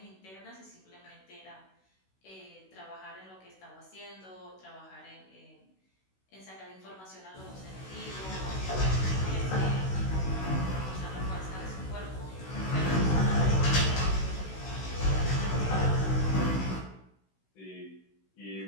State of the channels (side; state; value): right; late; 16 ms